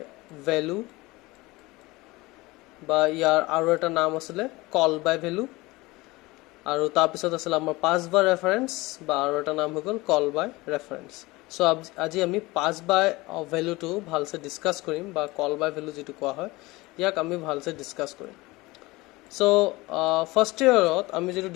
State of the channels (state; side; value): quieter; right; 21.5 dB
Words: value বা ইয়াৰ আৰু এটা নাম আছিল call by value আৰু তাৰ পিছত আছিল আমাৰ pass by reference বা আৰু এটা নাম হৈ গ'ল call by reference. সো আজি আমি pass by value টো ভালসে ডিসকাস কৰিম বা call by value যেটো কোৱা হয় ইয়াক আমি ভালসে ডিসকাস কৰিম. So first year আমি যেটো